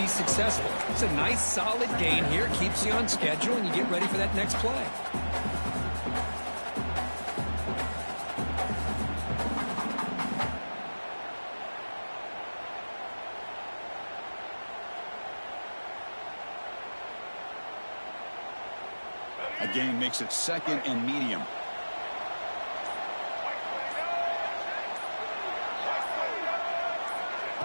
successful. It's a nice, solid gain here. Keeps you on schedule, and you get ready for that next play. A gain makes it second and medium.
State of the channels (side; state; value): both; inverted; correlation -1.00